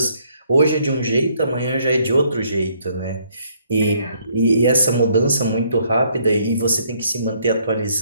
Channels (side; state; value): both; inverted; correlation -0.68